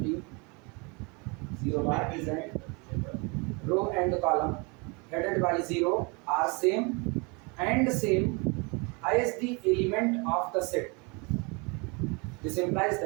0 bar is a row and column headed by 0 are same and same as the element of the set. This implies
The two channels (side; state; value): left; quieter; 30.4 dB